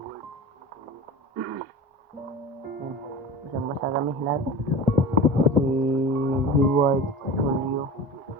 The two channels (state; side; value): normal; both; correlation 0.33